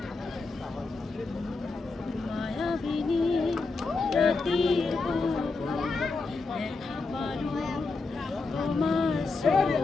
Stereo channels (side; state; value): right; quieter; 3.9 dB